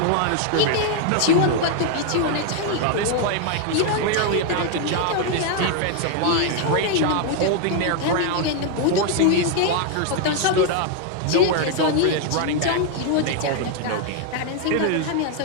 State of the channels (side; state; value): both; different; correlation 0.00